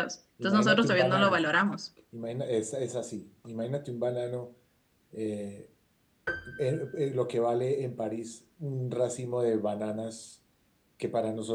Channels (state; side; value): identical; both; correlation 1.00